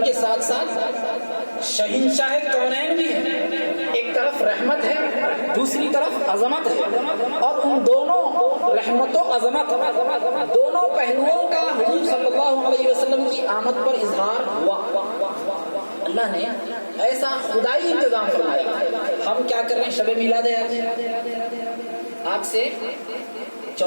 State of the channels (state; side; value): inverted; both; correlation -1.00